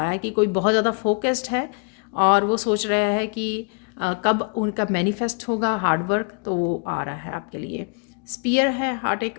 कि कोई बहुत ज़्यादा फोकस्ड है और वो सोच रहा है कि कब उनका मैनिफेस्ट होगा हार्ड वर्क, तो वो आ रहा है आपके लिए। स्पीयर है, हार्ट एक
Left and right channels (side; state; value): right; quieter; 37.1 dB